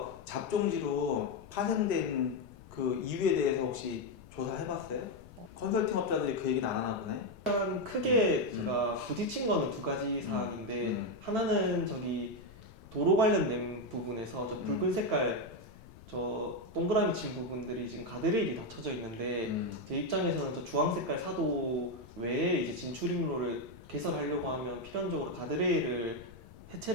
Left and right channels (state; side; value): noise; left; rumble, 20 dB below the sound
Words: 잡종지로 파생된 그 이유에 대해서 혹시 조사해봤어요? 컨설팅 업자들이 그 얘기는 안 하나 보네. 일단 크게 제가 부딪힌 거는 두 가지 사항인데 하나는 도로 관련된 부분에서 저 붉은 색깔 저 동그라미 친 부분들이 지금 가드레일이 닫혀져 있는데 제 입장에서는 저 주황 색깔 사도 외에 이제 진출입로를 개설하려고 하면 필연적으로 가드레일을